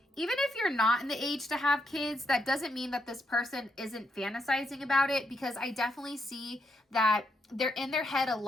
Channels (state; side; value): normal; both; correlation 0.79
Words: Even if you're not in the age to have kids, that doesn't mean that this person isn't fantasizing about it, because I definitely see that they're in their head a